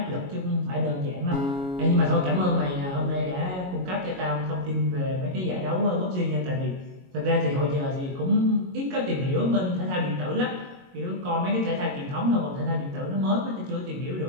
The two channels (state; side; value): late; left; 22 ms